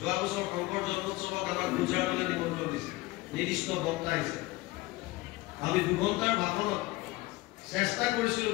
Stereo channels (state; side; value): quieter; right; 20.3 dB